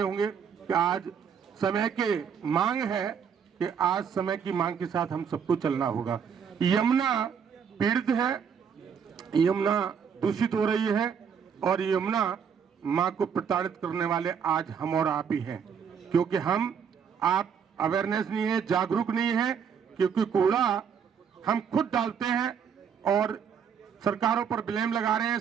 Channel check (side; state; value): left; quieter; 7.2 dB